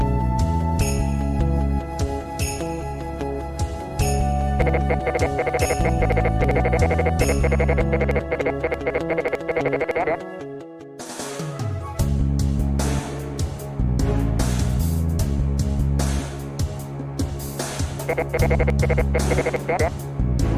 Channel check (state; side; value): identical; both; correlation 1.00